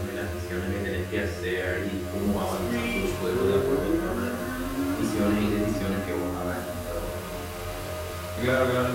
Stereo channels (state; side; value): identical; both; correlation 1.00